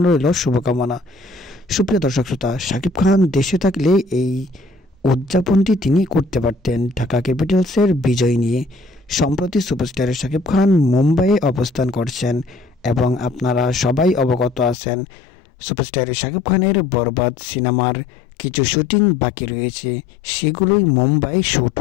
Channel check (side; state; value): right; drops out; at 14.8 s